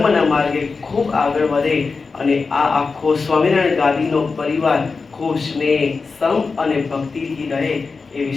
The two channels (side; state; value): right; quieter; 4.5 dB